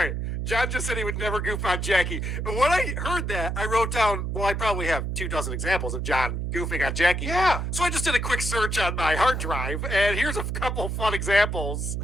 John just said he would never goof on Jackie. And when I heard that, I wrote down, well, I probably have 24 examples of John goofing on Jackie. Yeah. So I just did a quick search on my hard drive, and here's a couple fun examples.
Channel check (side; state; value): right; noise; hum, 2 dB below the sound